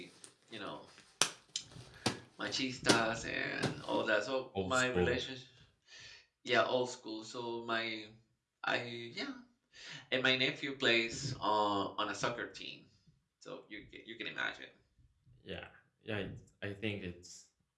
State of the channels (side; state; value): both; identical; correlation 1.00